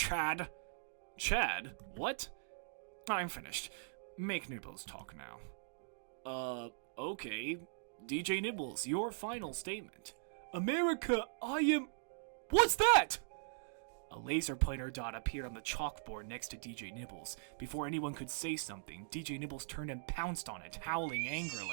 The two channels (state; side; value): silent; left; digital silence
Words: Chad? What? I'm finished. Make Nibbles talk now. Okay. DJ Nibbles, your final statement. America, I am... What's that? A laser pointer dot appeared on the chalkboard next to DJ Nibbles. Before anyone could say something, DJ Nibbles turned and pounced on it, howling